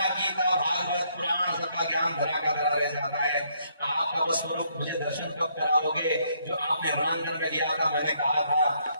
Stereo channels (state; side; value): inverted; both; correlation -0.70